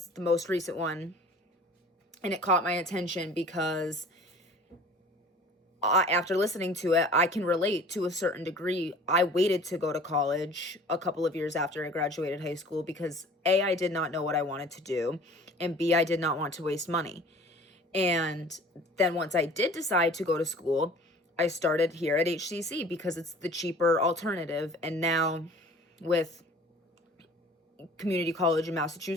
the most recent one, and it caught my attention because after listening to it, I can relate to a certain degree. I waited to go to college a couple of years after I graduated high school because A, I did not know what I wanted to do, and B, I did not want to waste money. And then once I did decide to go to school, I started here at HCC because it's the cheaper alternative. And now with community college in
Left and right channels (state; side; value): normal; both; correlation 0.47